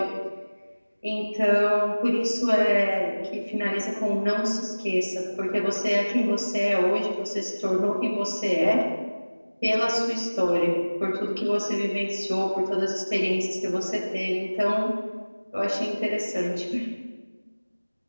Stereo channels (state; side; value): inverted; both; correlation -1.00